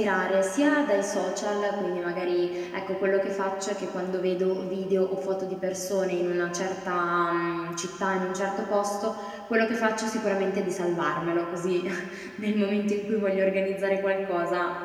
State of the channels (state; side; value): identical; both; correlation 1.00